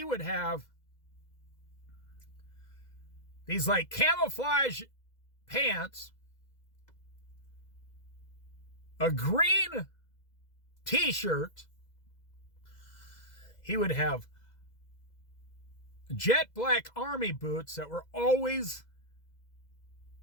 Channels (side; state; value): right; late; 2.0 ms